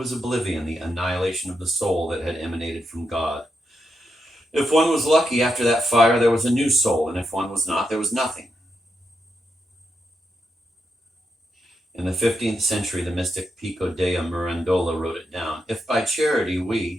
oblivion, the annihilation of the soul that had emanated from God. If one was lucky after that fire, there was a new soul, and if one was not, there was nothing. In the 15th century, the mystic Pico dea Mirandola wrote it down. If by charity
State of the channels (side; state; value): both; normal; correlation 0.84